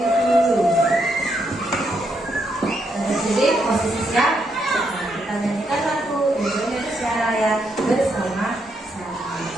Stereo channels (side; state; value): both; normal; correlation 0.78